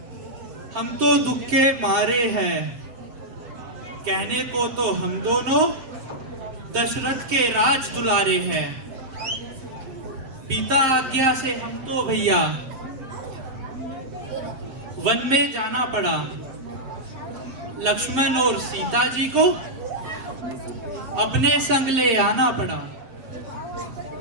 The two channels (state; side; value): late; left; 7.7 ms